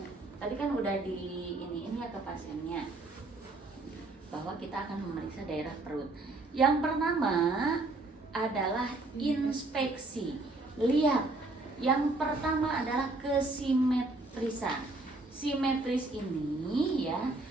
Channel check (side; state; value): left; quieter; 3.1 dB